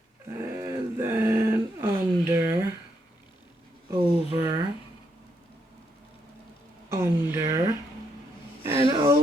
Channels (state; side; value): normal; both; correlation 0.77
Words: and then under, over, under, and